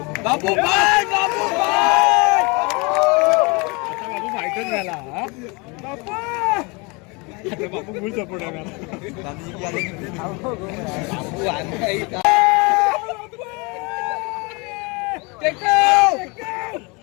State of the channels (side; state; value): right; quieter; 28.6 dB